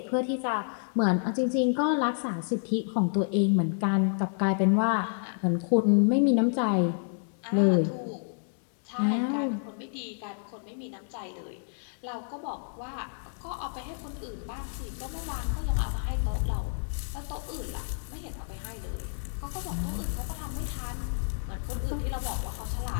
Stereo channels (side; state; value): right; silent; digital silence